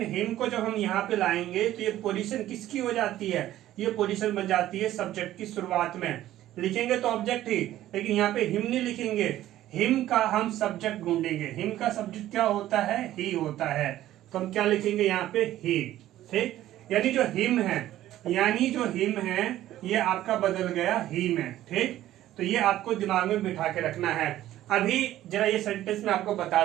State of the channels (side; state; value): left; quieter; 13.7 dB